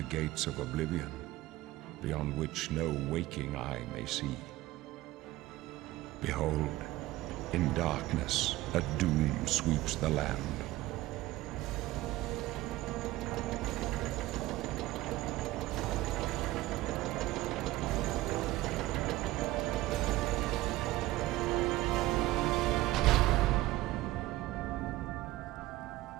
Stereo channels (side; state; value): left; quieter; 17.3 dB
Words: gates of Oblivion, beyond which no waking eye may see. Behold, in darkness, a doom sweeps the land.